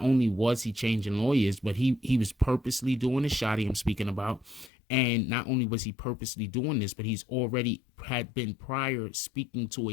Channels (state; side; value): drops out; right; at 4.7 s